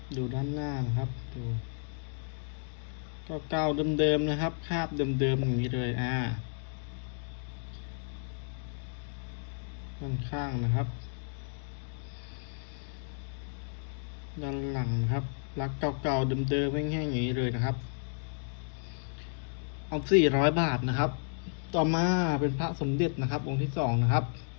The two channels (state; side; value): silent; right; digital silence